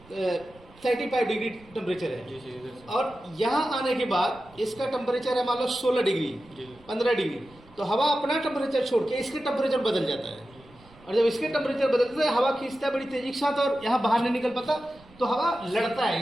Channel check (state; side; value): noise; right; rumble, 25 dB below the sound